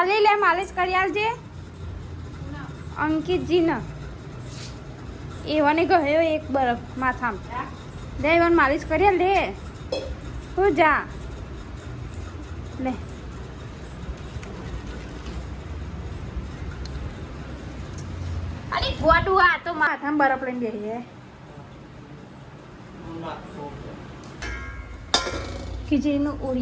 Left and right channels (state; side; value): identical; both; correlation 1.00